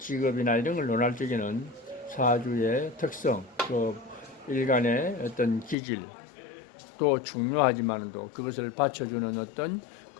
이런 걸 논할 적에는 사주의 특성, 또 일간의 어떤 기질 또 중요하지만도 그것을 받쳐주는 어떤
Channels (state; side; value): drops out; right; at 5.8 s